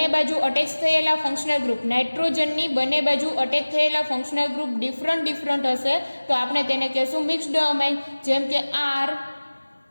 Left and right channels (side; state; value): both; inverted; correlation -1.00